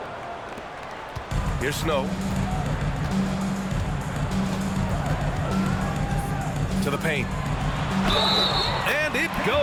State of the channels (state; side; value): identical; both; correlation 1.00